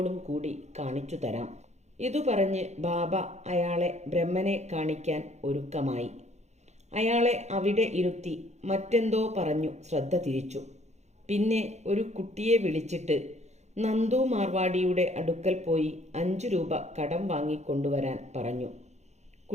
കൂടി കാണിച്ചു തരാം. ഇതു പറഞ്ഞ് ബാബ അയാളെ ബ്രഹ്മനെ കാണിക്കാൻ ഒരുക്കമായി. അയാളെ അവിടെ ഇരുത്തി മറ്റെന്തോ പറഞ്ഞു ശ്രദ്ധ തിരിച്ചു. പിന്നെ ഒരു കുട്ടിയെ വിളിച്ചിട്ട് നന്ദു മാർവാടിയുടെ അടുക്കൽ പോയി 5 രൂപ കടം വാങ്ങിക്കൊണ്ടുവരാൻ പറഞ്ഞു.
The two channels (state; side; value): late; left; 0.33 ms